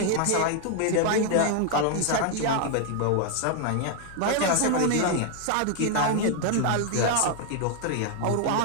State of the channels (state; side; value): different; both; correlation 0.01